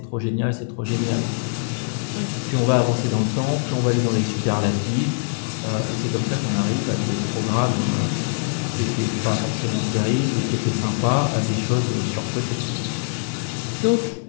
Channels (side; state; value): right; silent; digital silence